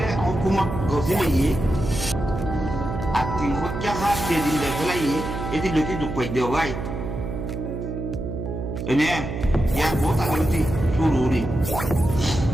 হুকুমত গছিল ইয়ে আর ৩০০ টাকা যেদিন দেখলাই এটি লোকে দুঃখ দিও ভাই এনে ইয়ার বহুত আগলতি শুরুরি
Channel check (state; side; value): noise; right; hum, 5 dB below the sound